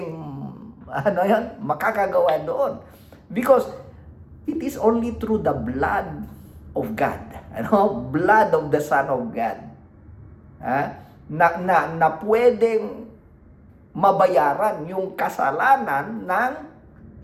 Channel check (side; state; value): both; identical; correlation 1.00